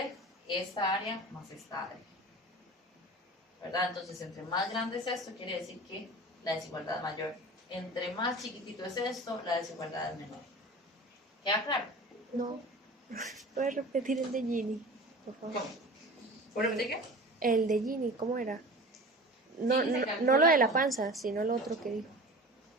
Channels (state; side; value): normal; both; correlation 0.38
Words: esta área más esta área, ¿verdad? Entonces, entre más grande es esto, quiere decir que la desigualdad es mayor. Entre más chiquitito es esto, la desigualdad es menor. ¿Queda claro? No. ¿Puedes repetir el de Gini, por favor? ¿Cómo? ¿Puedo repetir qué? El de Gini, ¿cómo era? No, Gini se no, calcula no lo de la como panza, sino lo otro que dijo.